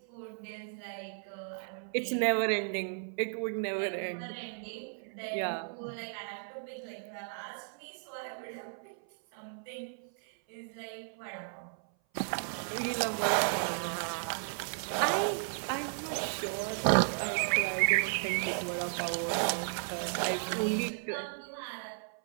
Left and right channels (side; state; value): left; silent; 55 dB below the other